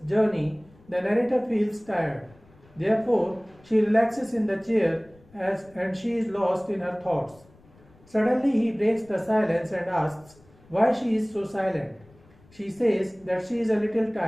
journey, the narrator feels tired. Therefore, she relaxes in the chair and she is lost in her thoughts. Suddenly, he breaks the silence and asks why she is so silent. She says that she is a little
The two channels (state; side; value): noise; left; rumble, 28 dB below the sound